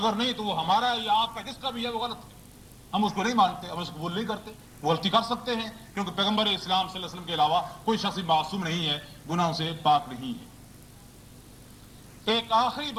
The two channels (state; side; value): identical; both; correlation 1.00